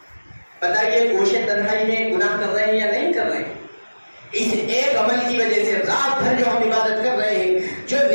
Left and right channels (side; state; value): both; inverted; correlation -1.00